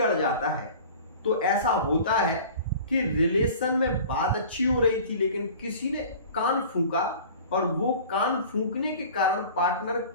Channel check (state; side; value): inverted; both; correlation -0.42